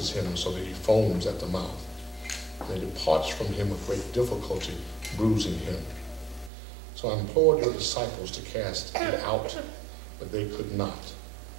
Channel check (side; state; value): left; drops out; at 6.5 s